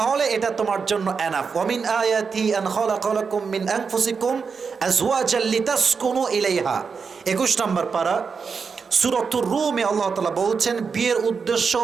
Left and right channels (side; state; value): left; quieter; 5.5 dB